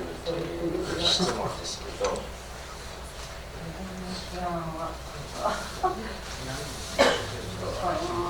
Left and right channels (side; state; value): both; identical; correlation 1.00